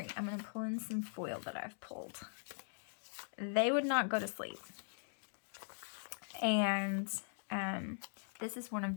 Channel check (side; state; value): right; silent; digital silence